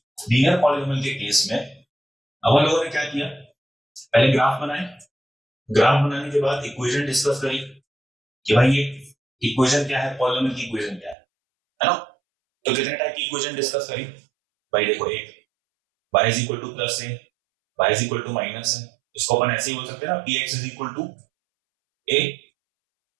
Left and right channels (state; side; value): drops out; left; at 11.2 s